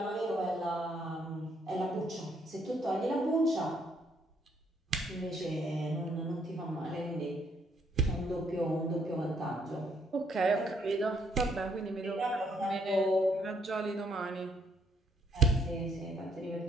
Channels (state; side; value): normal; both; correlation 0.69